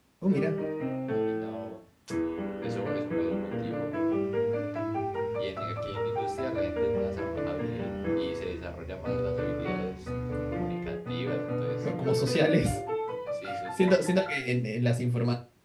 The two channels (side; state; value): both; identical; correlation 1.00